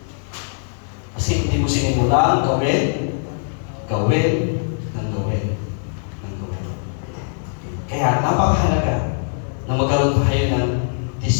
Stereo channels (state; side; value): silent; right; 62 dB below the other